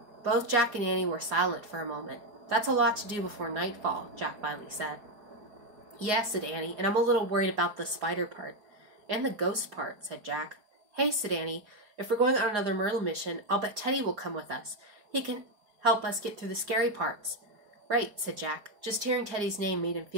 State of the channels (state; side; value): late; left; 4.9 ms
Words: Both Jack and Annie were silent for a moment. "That's a lot to do before nightfall," Jack finally said. "Yes," said Annie, "and I'm a little worried about the spider part." "And the ghost part," said Jack. "Hey," said Annie, "if we're going on another Merlin mission, I'll bet Teddy will come with us. He can help us get through the scary parts." "Right," said Jack. Just hearing Teddy's name made him